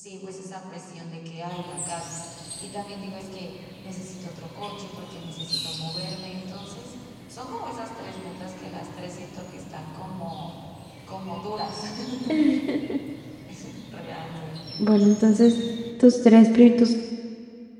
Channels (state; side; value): identical; both; correlation 1.00